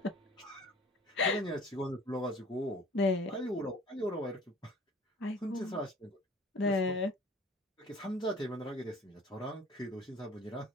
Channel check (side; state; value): both; normal; correlation 0.48